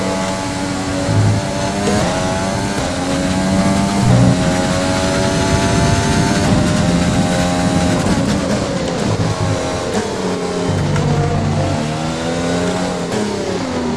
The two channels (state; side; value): identical; both; correlation 1.00